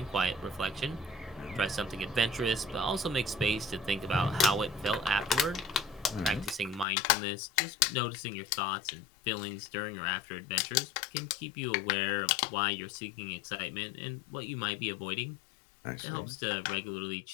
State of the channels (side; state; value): right; drops out; at 6.9 s